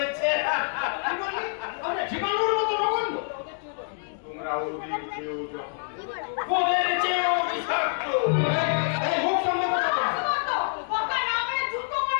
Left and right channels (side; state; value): right; silent; 60 dB below the other